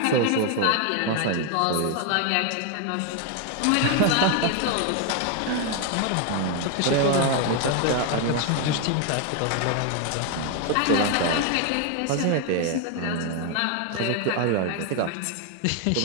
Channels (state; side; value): different; both; correlation 0.01